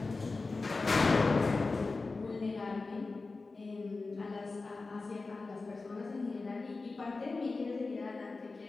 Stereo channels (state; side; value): quieter; right; 3.8 dB